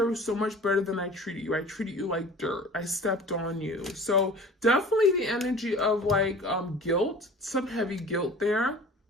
so much better than I treated you. I treated you like dirt. I stepped on you. So definitely the energy of like guilt, some heavy guilt there.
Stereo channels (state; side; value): normal; both; correlation 0.43